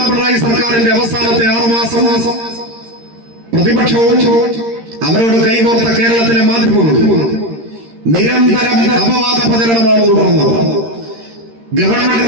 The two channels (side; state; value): left; late; 13 ms